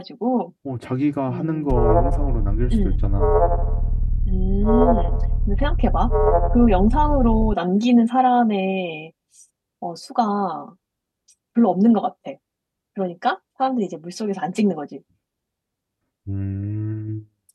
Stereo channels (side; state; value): both; identical; correlation 1.00